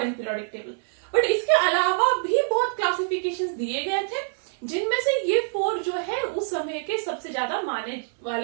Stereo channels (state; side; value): silent; left; 62 dB below the other